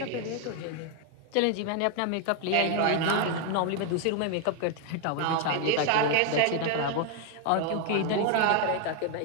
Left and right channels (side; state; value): both; different; correlation 0.01